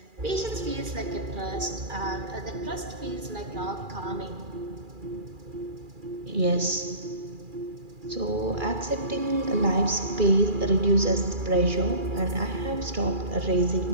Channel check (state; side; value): late; left; 2.4 ms